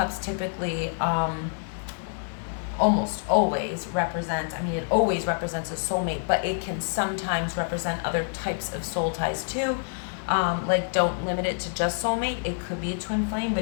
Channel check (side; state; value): right; silent; digital silence